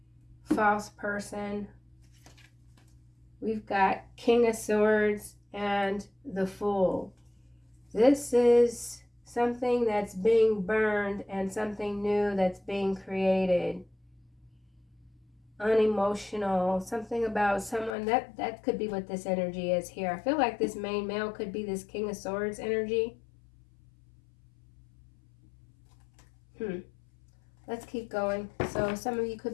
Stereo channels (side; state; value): right; drops out; at 17.9 s